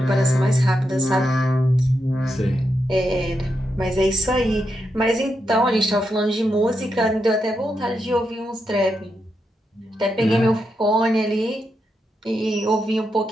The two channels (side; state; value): both; normal; correlation 0.84